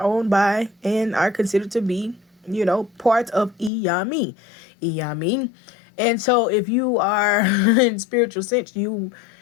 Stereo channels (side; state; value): right; drops out; at 3.7 s